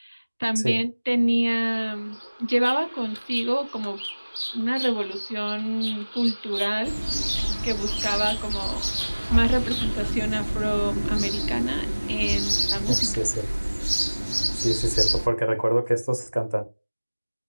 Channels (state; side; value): inverted; both; correlation -1.00